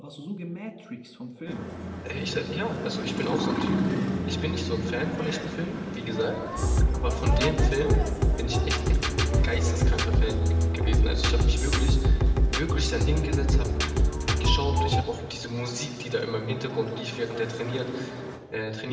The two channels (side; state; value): both; identical; correlation 1.00